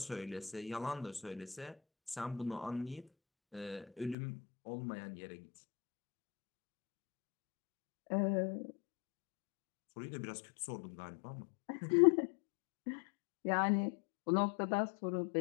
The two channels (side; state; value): right; drops out; at 4.2 s